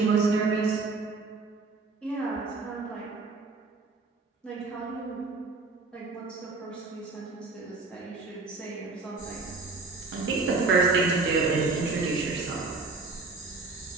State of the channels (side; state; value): left; quieter; 3.9 dB